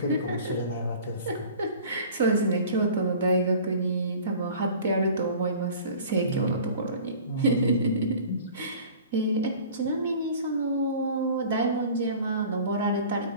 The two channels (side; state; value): both; inverted; correlation -0.44